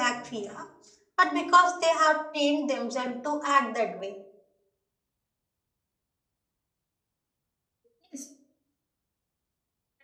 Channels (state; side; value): identical; both; correlation 1.00